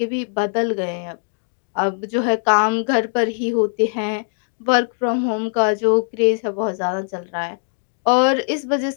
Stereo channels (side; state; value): right; silent; digital silence